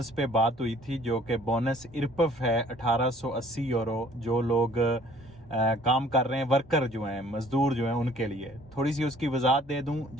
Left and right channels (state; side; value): normal; both; correlation 0.55